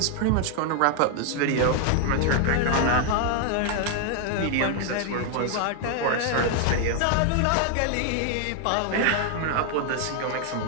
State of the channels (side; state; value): both; different; correlation 0.00